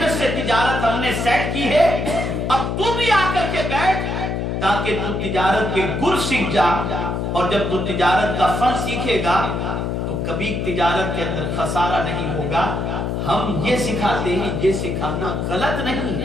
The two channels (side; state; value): left; noise; hum, 1 dB below the sound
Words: سے تجارت ہم نے سیٹ کی ہے, اب تو بھی آ کر کے بیٹھ تاکہ تو تجارت کے گر سیکھ جا, اور جب تو تجارت کا فن سیکھے گا تو کبھی تجارت کے اندر خسارہ نہیں ہوگا. ہم یہ سکھاتے ہیں, یہ سکھانا غلط نہیں